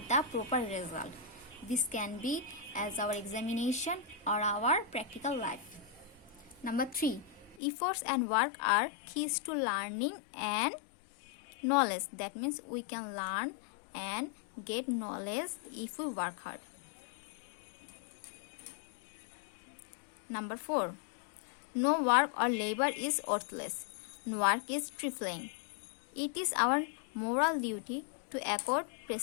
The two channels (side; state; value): right; drops out; at 7.6 s